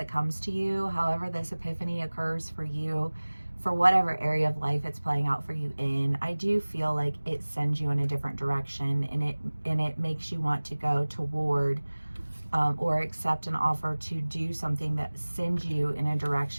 comes to you, however this epiphany occurs for you, for whatever area of life it's playing out for you in, I do feel like it sends you in a different direction and it makes you want to go toward or accept an offer to do something that sends you in a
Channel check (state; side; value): inverted; both; correlation -1.00